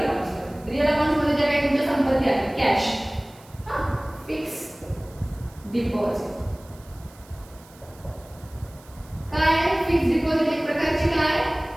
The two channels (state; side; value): noise; right; hiss, 25 dB below the sound